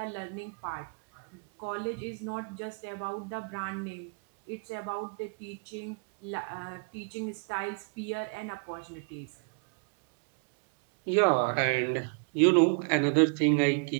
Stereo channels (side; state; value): left; quieter; 39.6 dB